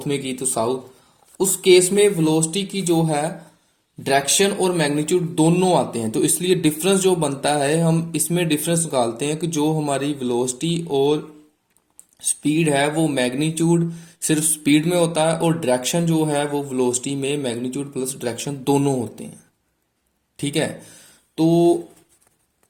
में की तो साउथ, उस केस में वेलोसिटी की जो है डायरेक्शन और मैग्नीट्यूड दोनों आते हैं। तो इसलिए डिफरेंस जो बनता है हम इसमें डिफरेंस निकालते हैं कि जो हमारी वेलोसिटी और स्पीड है वो मैग्नीट्यूड सिर्फ स्पीड में होता है और डायरेक्शन जो है वो वेलोसिटी में मैग्नीट्यूड प्लस डायरेक्शन दोनों होते हैं। ठीक है, तो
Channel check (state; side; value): identical; both; correlation 1.00